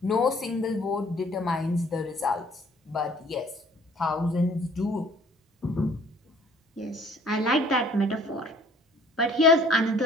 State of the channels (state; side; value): normal; both; correlation 0.56